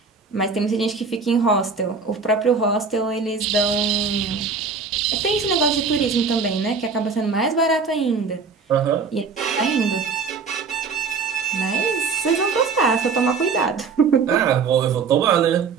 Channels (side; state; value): left; quieter; 5.1 dB